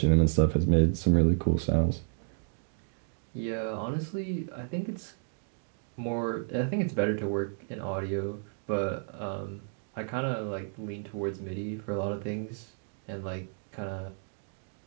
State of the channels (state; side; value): silent; left; digital silence